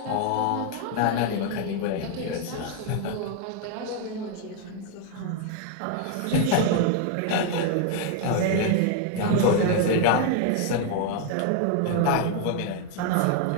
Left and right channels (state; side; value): different; both; correlation 0.00